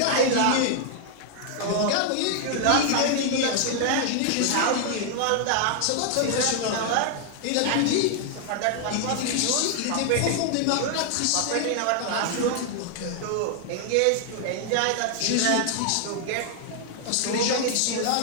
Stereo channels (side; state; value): both; different; correlation 0.00